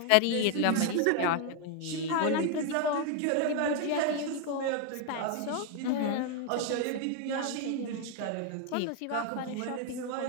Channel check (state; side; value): different; both; correlation 0.01